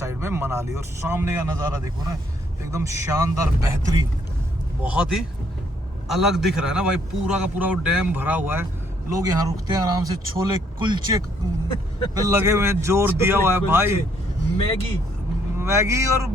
में मनाली। और सामने का नज़ारा देखो ना, एकदम शानदार बेहतरीन, बहुत ही अलग दिख रहा है ना भाई। पूरा का पूरा वो डैम भरा हुआ है, लोग यहाँ रुकते हैं आराम से, छोले कुलचे पे लगे हुए हैं, जोर दिया हुआ है भाई। मैगी और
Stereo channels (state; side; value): normal; both; correlation 0.69